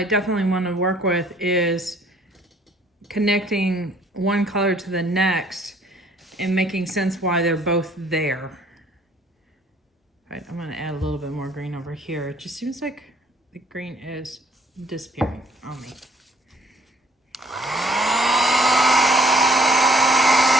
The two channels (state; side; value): normal; both; correlation 0.60